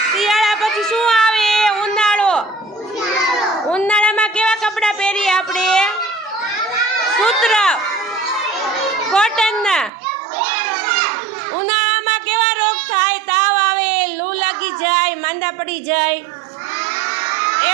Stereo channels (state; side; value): drops out; left; at 9.9 s